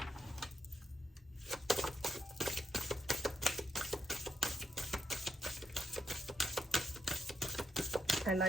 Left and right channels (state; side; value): normal; both; correlation 0.79